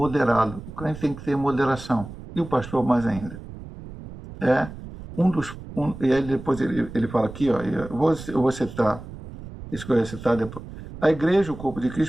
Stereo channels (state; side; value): noise; right; rumble, 13 dB below the sound